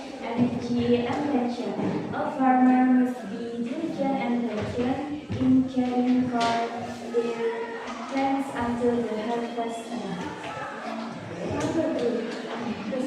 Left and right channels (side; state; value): both; identical; correlation 1.00